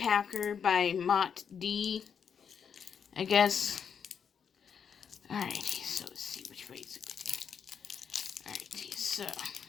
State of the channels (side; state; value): right; quieter; 7.1 dB